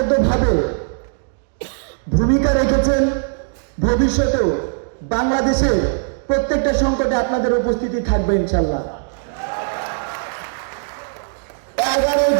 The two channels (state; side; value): silent; left; digital silence